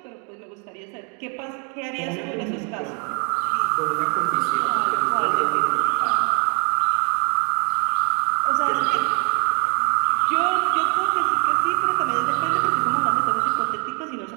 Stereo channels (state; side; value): quieter; left; 37.0 dB